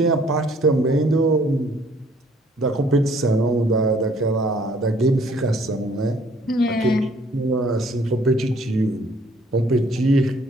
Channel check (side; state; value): both; normal; correlation 0.60